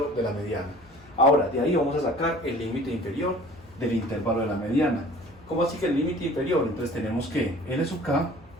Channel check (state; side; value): noise; left; hum, 28 dB below the sound